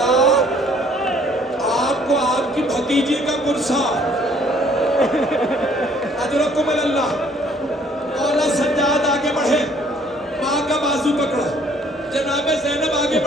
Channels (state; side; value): normal; both; correlation 0.60